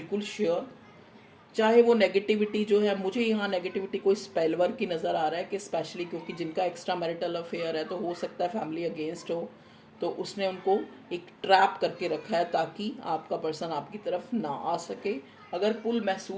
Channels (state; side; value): identical; both; correlation 1.00